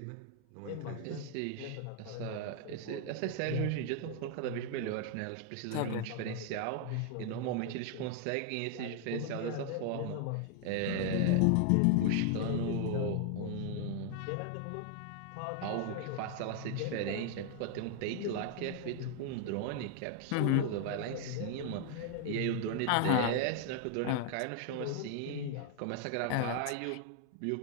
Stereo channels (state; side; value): different; both; correlation 0.00